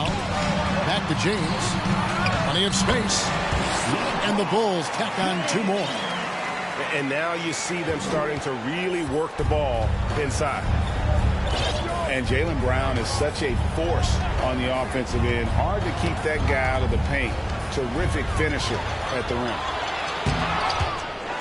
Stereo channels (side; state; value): both; identical; correlation 1.00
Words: Back to James. Plenty of space. And the Bulls tack on two more. And now you see them starting to really work the ball inside. And Jaylen Brown is such a force on the offensive end. Hard to keep that guy out of the paint. Terrific finisher at the rim.